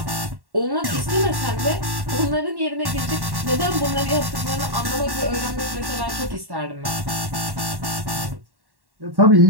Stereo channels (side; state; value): left; late; 1.1 ms